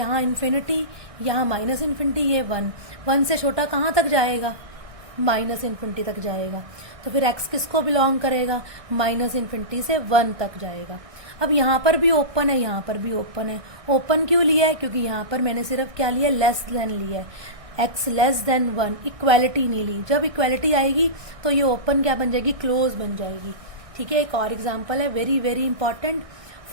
इन्फिनिटी, यहाँ माइनस इन्फिनिटी, ये 1 से छोटा कहाँ तक जाएगा, माइनस इन्फिनिटी तक जाएगा। तो फिर x किसको बिलोंग करेगा, माइनस इन्फिनिटी से 1 तक जाएगा। अब यहाँ पर भी ओपन है, यहाँ पर भी ओपन है। ओपन क्यों लिया है, क्योंकि यहाँ पर मैंने सिर्फ क्या लिया, लेस देन लिया है, x लेस देन 1, इक्वैलिटी नहीं ली। जब इक्वैलिटी आएगी तो ये ओपन क्या बन जाएगी, क्लोज बन जाएगी, ठीक है। एक और एग्जाम्पल है very very important,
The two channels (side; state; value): left; late; 1.6 ms